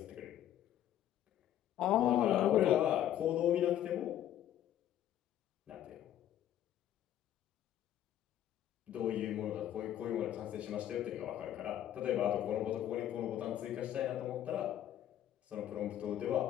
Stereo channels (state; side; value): quieter; right; 11.5 dB